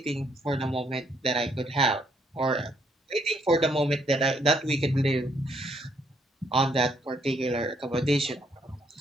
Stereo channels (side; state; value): both; normal; correlation 0.71